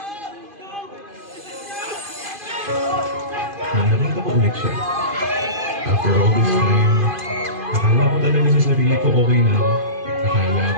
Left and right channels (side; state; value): left; late; 2.5 ms